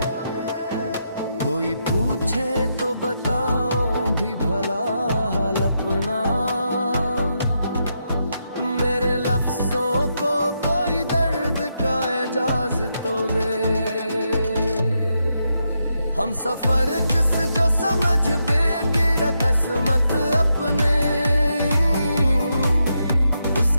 कोई पूछे तो बताओ भी भला हाल अपना। मेरे लफ्जों को कोई दर्द का एजाज तो दे। हम सफर जिस जो समझ बेगिर किस्मत अपने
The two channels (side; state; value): both; inverted; correlation -0.83